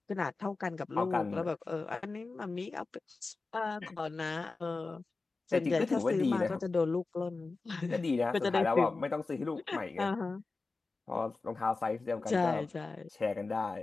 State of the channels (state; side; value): quieter; right; 3.8 dB